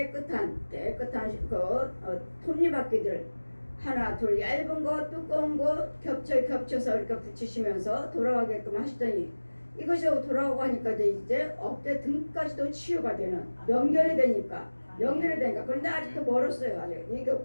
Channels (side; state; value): both; inverted; correlation -1.00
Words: 톱니바퀴들 하나 둘 얇은 거 두꺼운 거 겹쳐서 이렇게 붙이시면서 돌아가게끔 하시더니 이것이 돌아오고 하니까 이제 어깨 등까지도 치유가 되는 연결이 되니까 그런데 아직도 멀었어요. 아직 이게